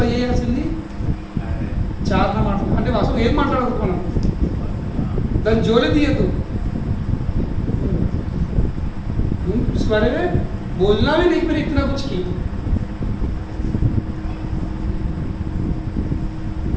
చేయాల్సింది చాలా మాట్లాడు, అంటే అసలు ఏం మాట్లాడకూడదు, మనం దాన్ని జోలే తీయద్దు. इस बारे में बोलना भी नहीं, फिर इतना कुछ की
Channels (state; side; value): identical; both; correlation 1.00